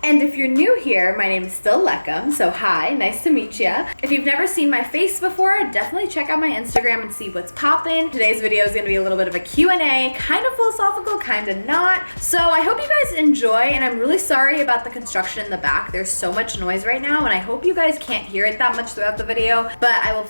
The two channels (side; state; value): both; inverted; correlation -1.00